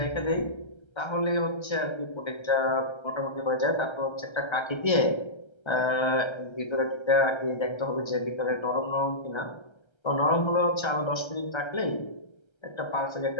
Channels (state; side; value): late; right; 1.3 ms